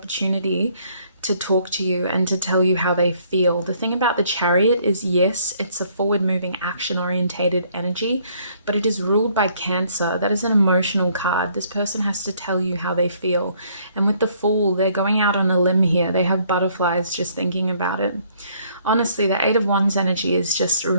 to talk to you and to tell you how they feel. The thing about the Chariot is, yes, it's a forward-moving, action-orientated energy, but it is ruled by Cancer. That is an emotional card. This person has to tell you how they feel. And with the Fool, they're going out on a limb here. They have butterflies just thinking about it. Honestly, the Eight of Wands energy is just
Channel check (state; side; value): inverted; both; correlation -0.64